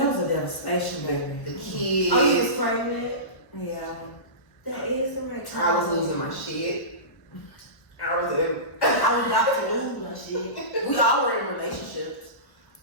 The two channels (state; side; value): late; right; 1.1 ms